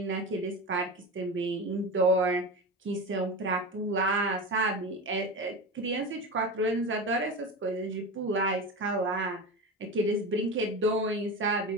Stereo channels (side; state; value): both; normal; correlation 0.25